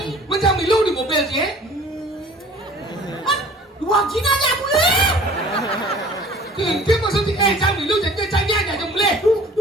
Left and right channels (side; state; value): both; normal; correlation 0.49